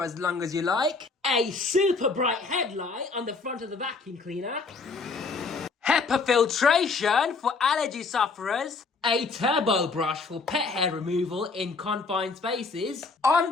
as long as you like, a super bright headlight on the front of the vacuum cleaner, HEPA filtration for allergy sufferers, a turbo brush for pet hair removal in confined spaces,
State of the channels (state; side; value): quieter; right; 4.3 dB